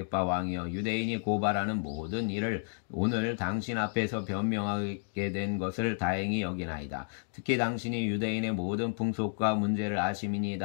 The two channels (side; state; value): right; silent; digital silence